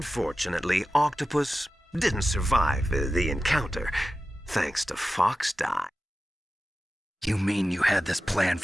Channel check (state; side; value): normal; both; correlation 0.94